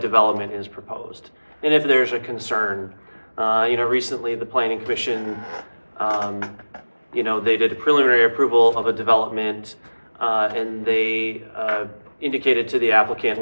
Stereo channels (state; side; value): inverted; both; correlation -1.00